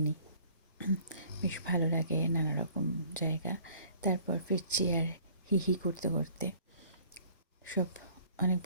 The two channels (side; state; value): both; inverted; correlation -0.54